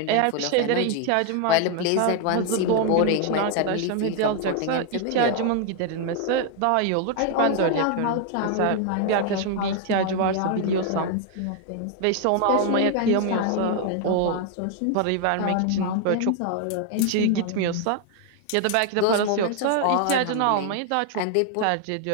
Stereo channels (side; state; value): both; different; correlation 0.00